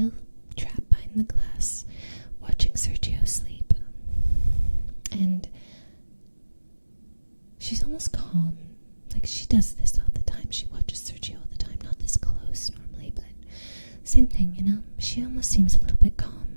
trapped behind the glass, watching Sergio sleep. And she's almost calm. Like, she does this all the time. She watches Sergio all the time. Not this close normally, but same thing, you know? She almost seems a little bit calm.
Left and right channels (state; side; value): inverted; both; correlation -1.00